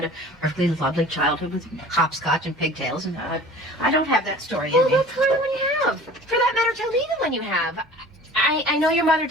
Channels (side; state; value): both; normal; correlation 0.44